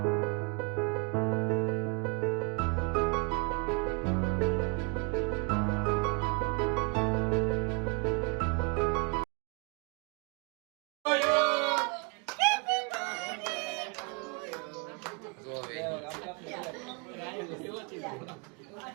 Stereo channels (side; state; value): left; quieter; 33.0 dB